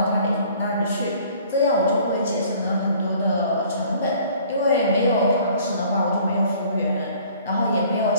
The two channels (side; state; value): both; inverted; correlation -0.54